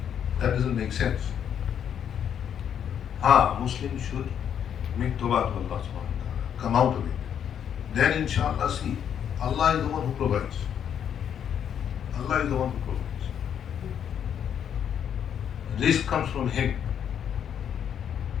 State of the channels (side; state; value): right; quieter; 8.8 dB